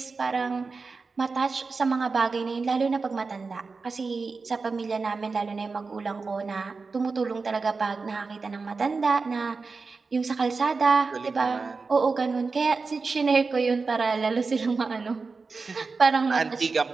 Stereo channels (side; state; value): left; quieter; 4.4 dB